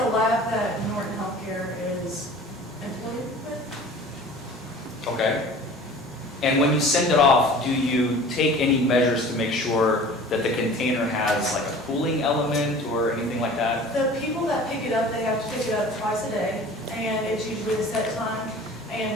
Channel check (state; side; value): normal; both; correlation 0.43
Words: lab that Norton Healthcare is employed with. Okay. And when you send it off, do you take any measures to make sure that the container has like a cooling element or anything like that? The people that pick it up, they have to pick it up twice a day, and it's usually a set time.